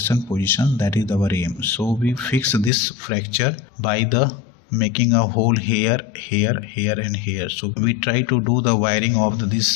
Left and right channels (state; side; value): drops out; right; at 2.7 s